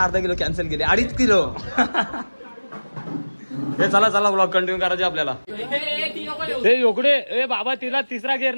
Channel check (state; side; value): inverted; both; correlation -1.00